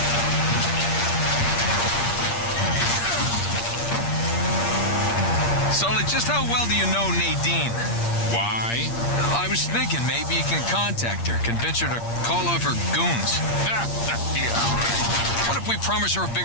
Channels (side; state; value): right; late; 8.6 ms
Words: Sully, just how well do you know Nadine? Why? I was thinking maybe you can contact her, convince her to call off her goons. Yeah, right. What if we promise her a